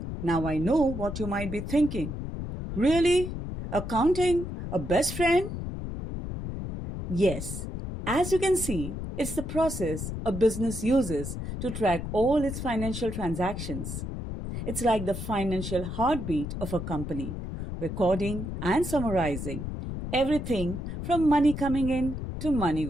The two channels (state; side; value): noise; left; rumble, 6 dB below the sound